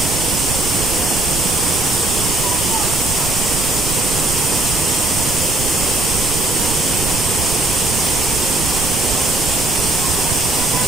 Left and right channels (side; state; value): right; noise; rumble, 6 dB below the sound